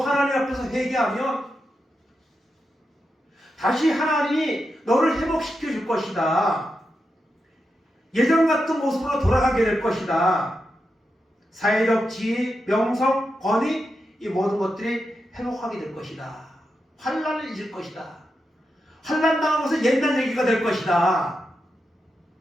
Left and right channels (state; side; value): normal; both; correlation 0.87